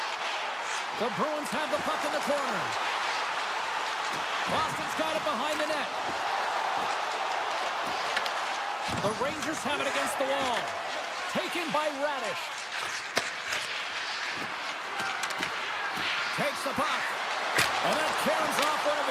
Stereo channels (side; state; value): both; identical; correlation 1.00